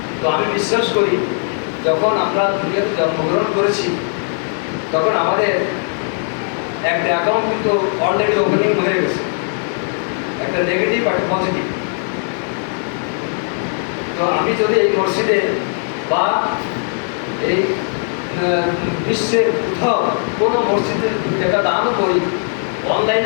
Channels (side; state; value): right; silent; 60 dB below the other